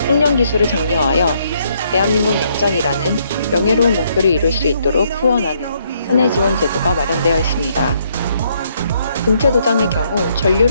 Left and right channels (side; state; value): both; inverted; correlation -0.71